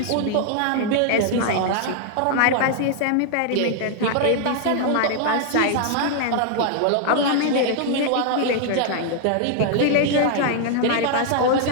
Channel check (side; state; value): both; different; correlation 0.00